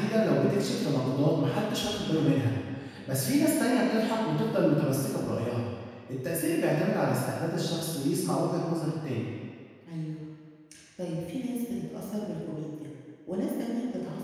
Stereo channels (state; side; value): identical; both; correlation 1.00